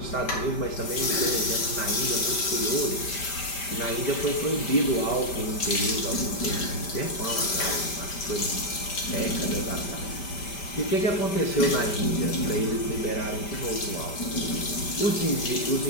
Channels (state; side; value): late; right; 5.1 ms